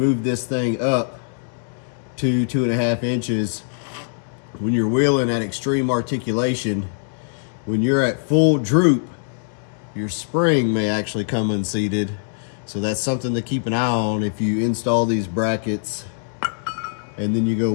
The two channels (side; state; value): right; silent; digital silence